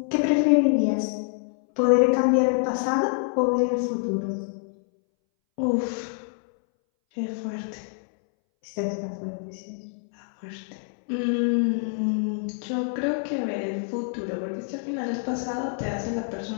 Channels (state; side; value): silent; right; 61 dB below the other